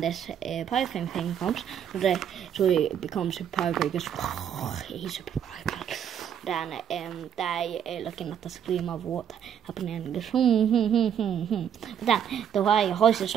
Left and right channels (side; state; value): left; quieter; 9.0 dB